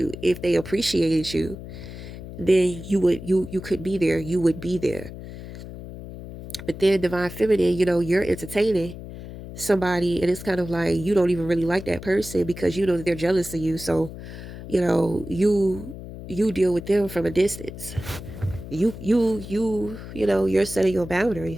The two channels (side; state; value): left; noise; hum, 12 dB below the sound